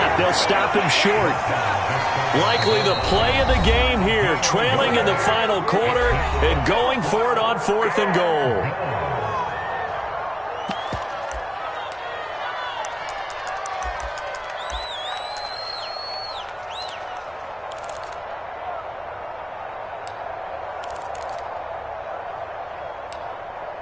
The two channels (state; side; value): identical; both; correlation 1.00